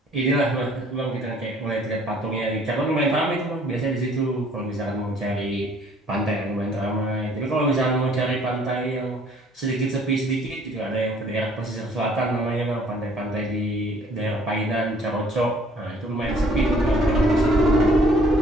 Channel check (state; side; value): normal; both; correlation 0.58